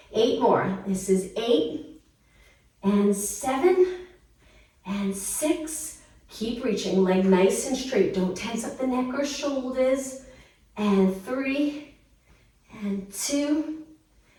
8 more. This is 8 and 7 and 6. Keep reaching, leg nice and straight. Don't tense up the neck or shoulders. And 3 and 2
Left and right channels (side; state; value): both; identical; correlation 1.00